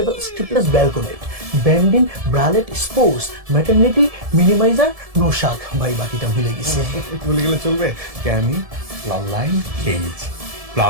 strapless balconette, bandeau bralette sports, maternity minimizer, no shock. ভাই বাকিটা ভুলে গেছি। বলে গেলে চলবে? Canny, line, cage,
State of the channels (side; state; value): left; late; 1.7 ms